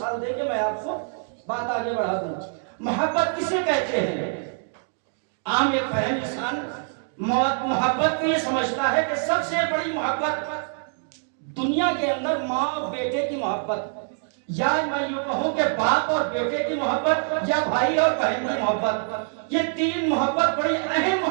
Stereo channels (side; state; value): left; silent; digital silence